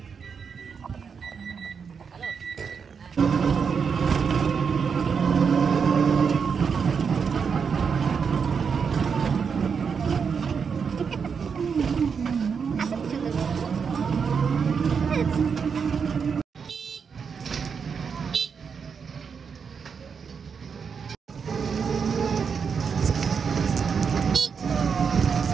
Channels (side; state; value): left; quieter; 6.2 dB